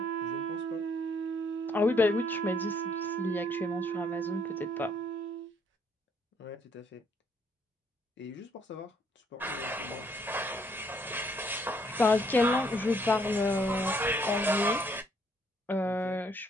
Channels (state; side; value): normal; both; correlation 0.68